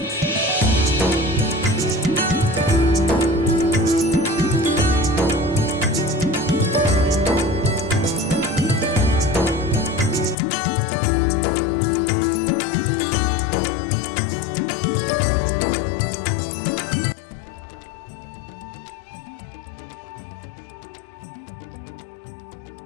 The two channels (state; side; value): drops out; right; at 10.4 s